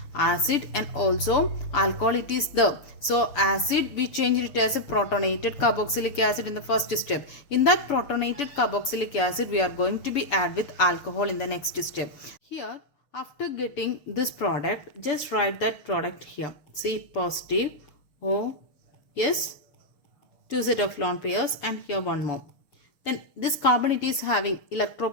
acid and also alcohol it is there. So acid we changed it as a protonated carboxylic acid in the first step. In that protonated carboxylic acid we are going to be add with alcohol in the next step. Here after getting this product, just write that product here. C positive, O, yes, two set of lone pairs and here one more. Then this carbon it is having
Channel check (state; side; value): late; right; 6.9 ms